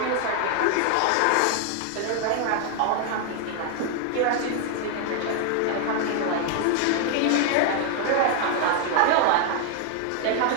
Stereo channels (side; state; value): both; different; correlation 0.00